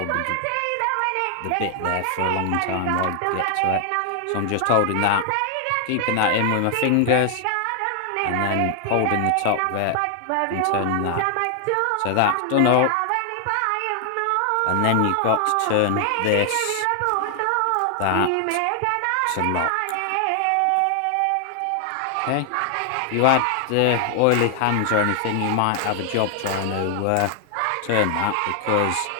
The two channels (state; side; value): different; both; correlation 0.00